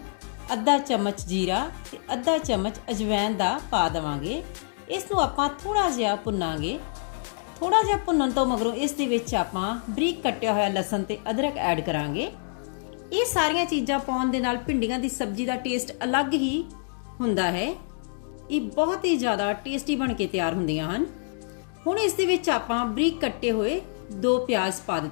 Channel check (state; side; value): silent; right; digital silence